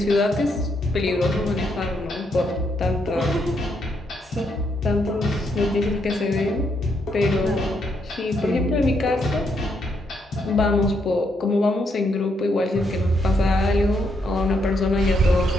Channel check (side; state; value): both; normal; correlation 0.77